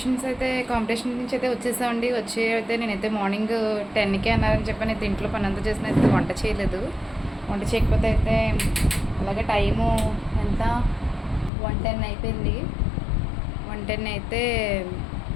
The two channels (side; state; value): right; drops out; at 11.5 s